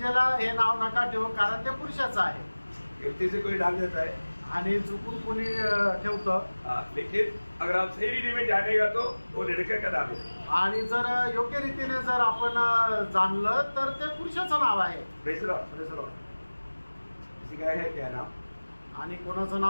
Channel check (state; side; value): inverted; both; correlation -1.00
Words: हे नाव नका ठेवू, कारण ते पुरुषाचं आहे। गलती से कोई डाल देता है आणि चुकून कोणी ठेवतं। लेकिन अगर आप सही रीति में जानेगा तो वो लड़के का नाम है। आणि जर योग्य रीतीने जर आपण जाणलं तर ते पुरुषाचं नाव आहे। Praise Lord. Praise Lord. किसी का है क्या नाम? आणि कोणाचं